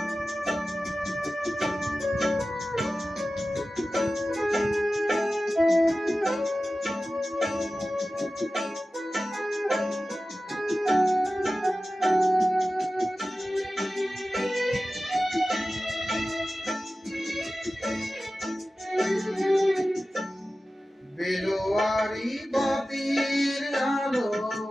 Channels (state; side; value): normal; both; correlation 0.95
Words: বেলোয়ারি বাতির আলো